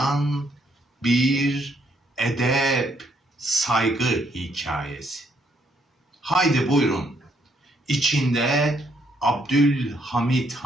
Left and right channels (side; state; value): both; normal; correlation 0.71